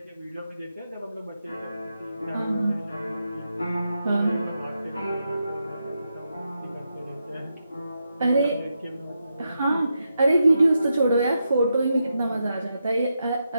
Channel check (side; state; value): both; inverted; correlation -0.85